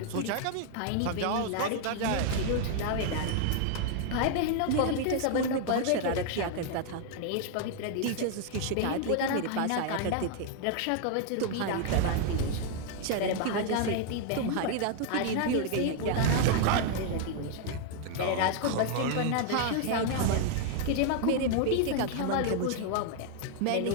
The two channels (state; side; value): different; both; correlation 0.00